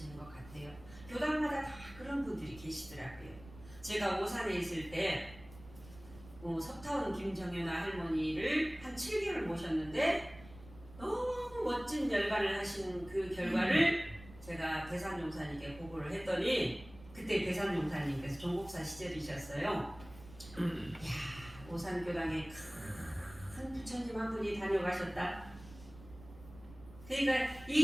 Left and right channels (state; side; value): noise; right; rumble, 18 dB below the sound